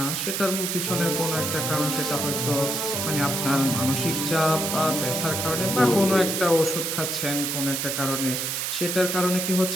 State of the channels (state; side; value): noise; right; hiss, 1 dB below the sound